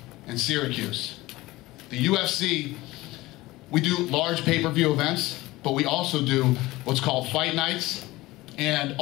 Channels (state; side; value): quieter; right; 19.2 dB